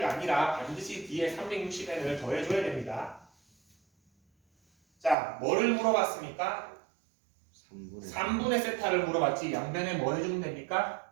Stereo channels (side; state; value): left; drops out; at 5.2 s